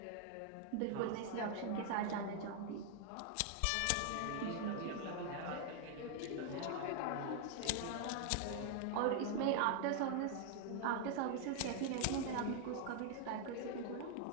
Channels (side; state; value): both; different; correlation 0.00